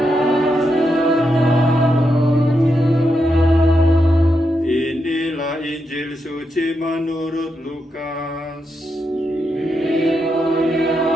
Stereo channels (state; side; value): normal; both; correlation 0.84